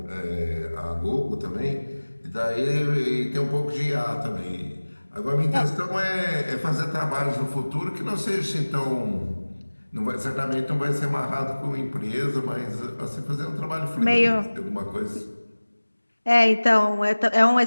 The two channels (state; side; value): inverted; both; correlation -1.00